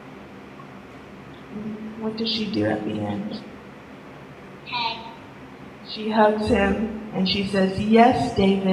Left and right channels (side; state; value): both; identical; correlation 1.00